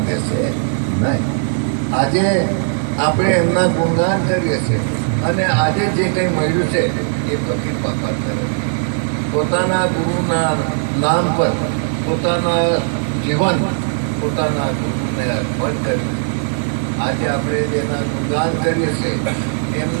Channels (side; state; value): left; silent; 67 dB below the other